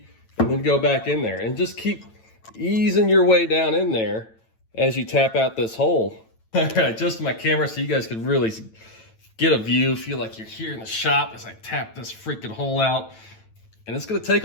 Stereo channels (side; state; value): right; late; 9.0 ms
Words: and then go back in there. And just keep easing your way down in there as you tap out this hole. All right, adjust my camera so you guys can really get a view, feel like you're here in the shop as I tap this freaking hole out. And it's gonna